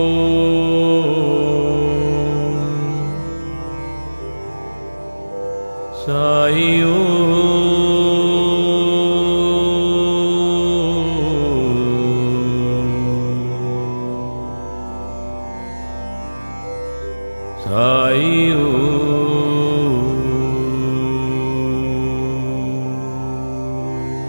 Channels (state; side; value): inverted; both; correlation -1.00